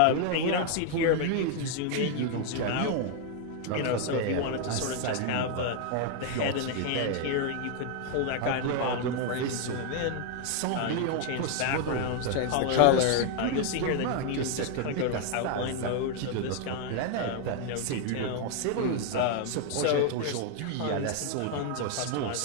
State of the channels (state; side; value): different; both; correlation 0.00